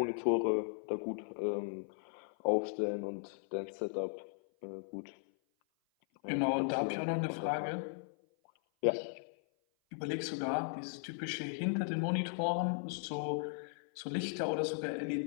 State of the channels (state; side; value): silent; right; 53 dB below the other